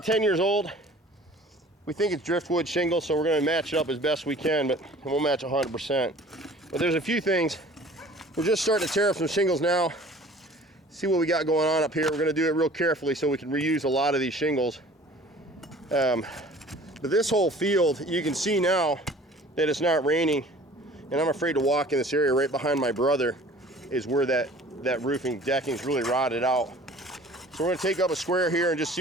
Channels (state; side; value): normal; both; correlation 0.48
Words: 10 years old. We think it's driftwood shingle, so we're gonna match it up as best we can, but it won't match 100%. But there's a few things. We're just starting to tear up some shingles now. See what we got going on up here. We're gonna do it real carefully so we can reuse a lot of these shingles. But this whole field, you can see now that it's not raining. And I'm afraid to walk in this area. Right behind my brother is where that roofing decking is really rotted out. So we're going to take up a square here and just